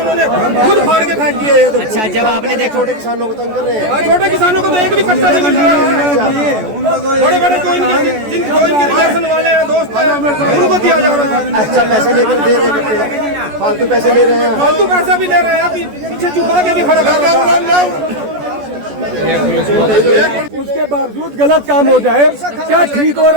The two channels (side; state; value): left; late; 14 ms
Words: उन्होंने खुद फाड़ के फेंक दिए। अच्छा, जब आपने देखा छोटे किसानों को तंग कर रहे हैं, छोटे किसानों को तो एक भी कट्टा नहीं मिल रहा है। बड़े बड़े जो इनके रिलेशन वाले हैं, दोस्त हैं, उनको दिया जा रहा है। अच्छा पैसे लेकर दे रहे हैं, फालतू पैसे ले रहे हैं, फालतू पैसा भी ले रहे हैं, पीछे छुपा के भी खड़ा कर रहे हैं। उसके बावजूद गलत काम हो जाए, क्या ठीक हो